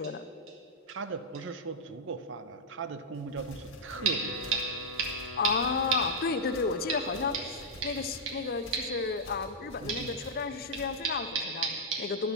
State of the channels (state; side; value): normal; both; correlation -0.06